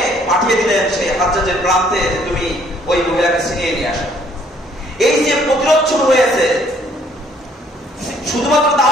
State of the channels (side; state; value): both; normal; correlation 0.63